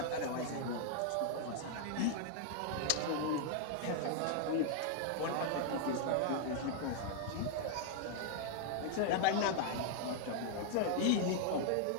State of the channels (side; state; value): both; different; correlation -0.01